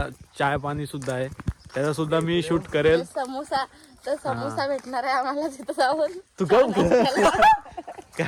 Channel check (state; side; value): identical; both; correlation 1.00